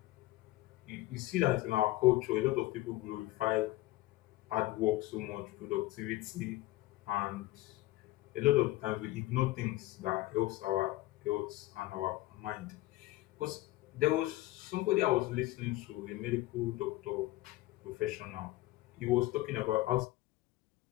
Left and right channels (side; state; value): right; quieter; 17.8 dB